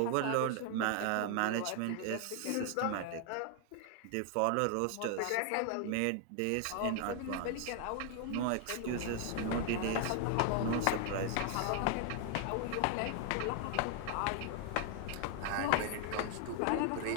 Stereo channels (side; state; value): both; different; correlation 0.00